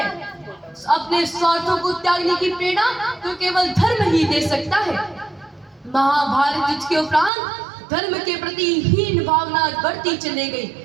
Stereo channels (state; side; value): drops out; left; at 7.3 s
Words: अपने स्वार्थों को त्यागने की प्रेरणा तो केवल धर्म ही दे सकता है। महाभारत युद्ध के उपरांत धर्म के प्रति हीन भावना बढ़ती चली